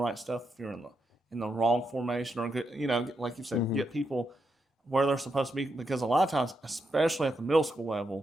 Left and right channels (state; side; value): normal; both; correlation 0.83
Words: stuff if you're in the wrong formation or good, like you said, Mhm. get people where they're supposed to be. Because a lot of times, especially at the middle school